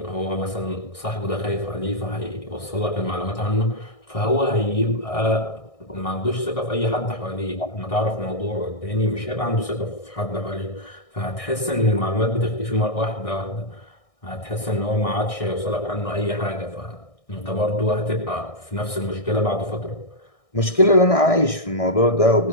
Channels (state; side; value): late; right; 1.6 ms